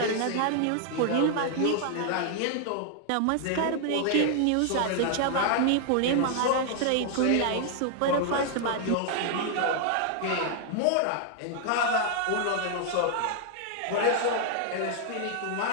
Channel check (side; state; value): both; different; correlation 0.00